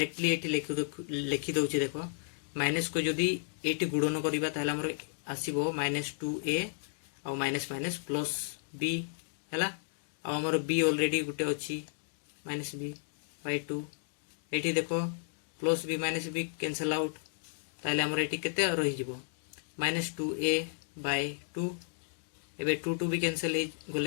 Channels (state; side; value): silent; right; digital silence